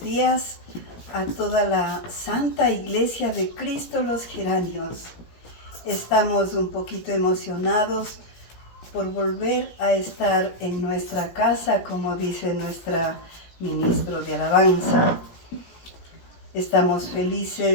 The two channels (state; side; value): late; right; 17 ms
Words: a toda la Santa Iglesia de Cristo los Geranios. Estamos un poquito emocionados por volver a estar en nuestra casa, como dice nuestra ministro de alabanza. Estamos